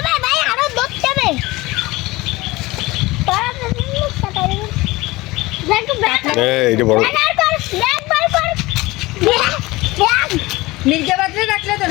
এইটা বড় মির্জাবাদে রাখলে তো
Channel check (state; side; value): quieter; right; 20.8 dB